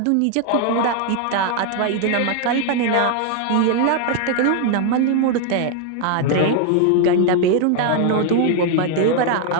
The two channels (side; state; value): both; different; correlation 0.00